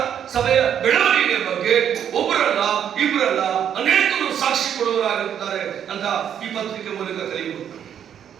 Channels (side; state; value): left; quieter; 9.1 dB